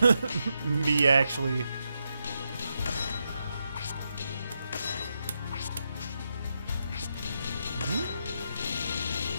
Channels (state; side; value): inverted; both; correlation -0.84